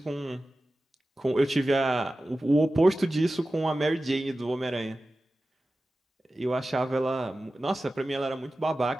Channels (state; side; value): normal; both; correlation 0.95